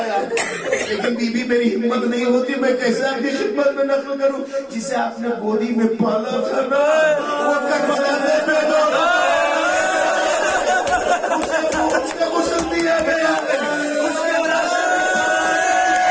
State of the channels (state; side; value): identical; both; correlation 1.00